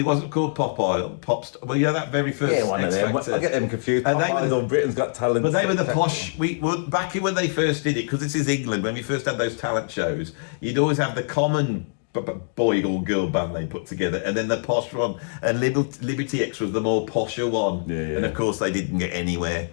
wasn't called Popstar. Well, that very first one of them. I get them confused. And Pop Idol, Britain's Got Talent. But they were the posh. Back when they first did it, because this is England, when we first had those talent shows, you'd always have the common boy or girl band they put together, and then the posh one, and Liberty X was the more posher one, and of course they didn't get anywhere.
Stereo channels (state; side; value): silent; right; digital silence